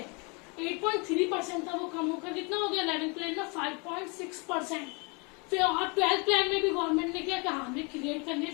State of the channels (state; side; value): quieter; right; 31.7 dB